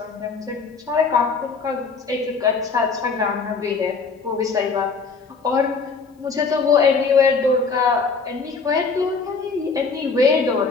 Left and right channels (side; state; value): right; quieter; 4.7 dB